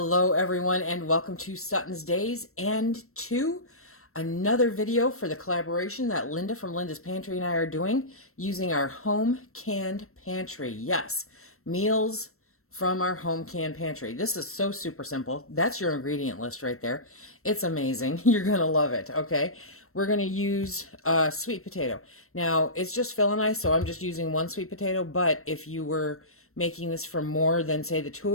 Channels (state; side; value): late; right; 0.63 ms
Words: everyone and welcome to SuttonsDaze and to another video for the collaboration that Linda from Linda's Pantry and I are doing using our home canned pantry. Yes, meals from our home canned pantry. This is so super simple. That's your ingredient list right there. It's amazing. You're going to love it, okay? We're going to use sweet potato. Now, it's just Phil and I, so I'm just using one sweet potato, but if you were making this for more than, say, the two